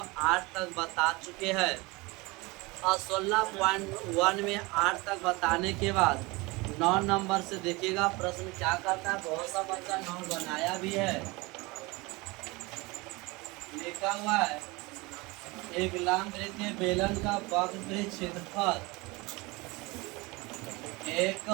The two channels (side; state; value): left; quieter; 24.2 dB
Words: 8 तक बता चुके हैं और 16.1 में 8 तक बताने के बाद 9 नंबर से देखिएगा प्रश्न क्या करता है। बहुत सा बच्चा 9 बनाया भी है, लिखा हुआ है एक लंबवृत्तीय बेलन का वक्र क्षेत्रफल एक